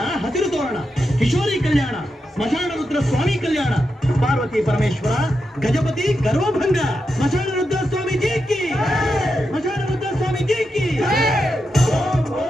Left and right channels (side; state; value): both; normal; correlation 0.87